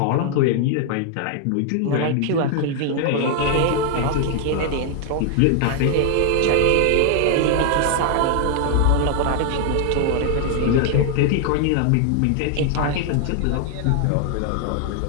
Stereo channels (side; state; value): both; different; correlation 0.00